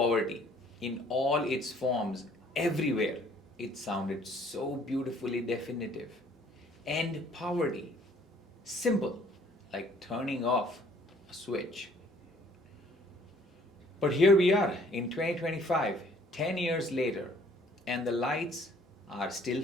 in all its forms everywhere, it sounded so beautifully definitive. End poverty. Simple, like turning off a switch. But here we are in 2025, 10 years later, and the lights are still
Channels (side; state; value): both; normal; correlation 0.59